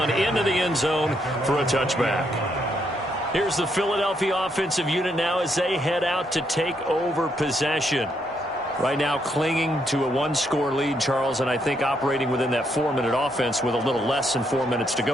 into the end zone for a touchback. Here's the Philadelphia offensive unit now as they head out to take over possession. Right now clinging to a 1-score lead, Charles, and I think operating within that 4-minute offense with a little less than 4 minutes to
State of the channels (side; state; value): both; normal; correlation 0.76